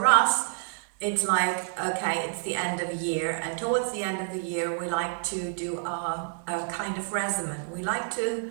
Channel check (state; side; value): silent; left; digital silence